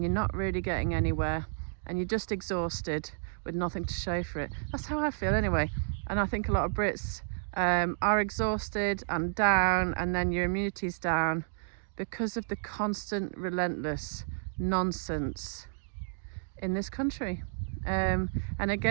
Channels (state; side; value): silent; left; digital silence